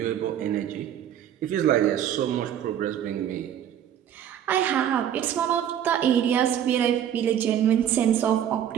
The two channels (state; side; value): quieter; left; 10.0 dB